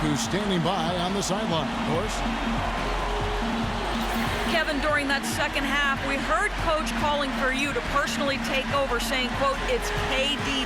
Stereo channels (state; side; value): identical; both; correlation 1.00